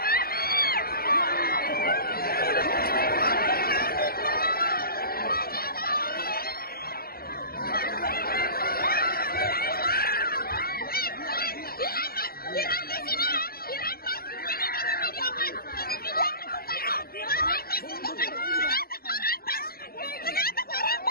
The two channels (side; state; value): right; late; 0.44 ms